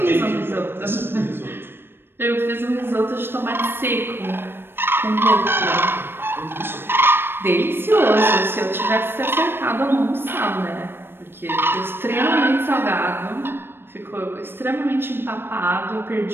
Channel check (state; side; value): late; left; 0.10 ms